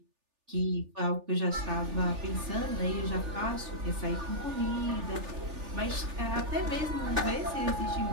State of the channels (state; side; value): late; left; 3.4 ms